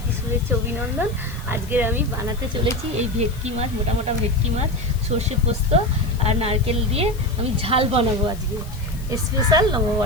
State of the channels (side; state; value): left; noise; hiss, 20 dB below the sound